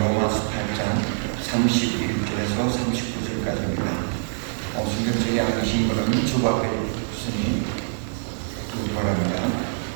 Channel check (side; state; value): left; silent; 62 dB below the other